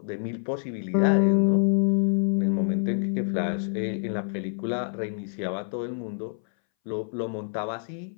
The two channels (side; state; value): right; silent; 60 dB below the other